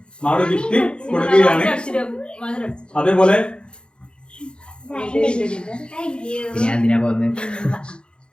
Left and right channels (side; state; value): right; late; 0.053 ms